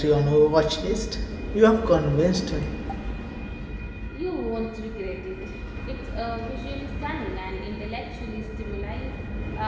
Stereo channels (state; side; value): identical; both; correlation 1.00